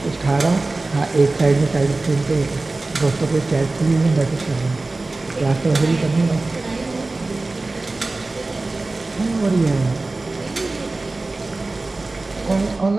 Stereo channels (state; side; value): quieter; left; 3.2 dB